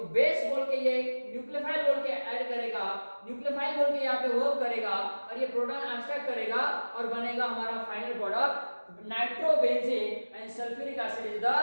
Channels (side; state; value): both; inverted; correlation -1.00